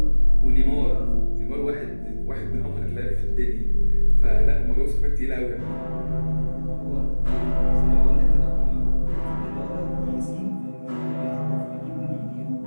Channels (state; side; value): inverted; both; correlation -1.00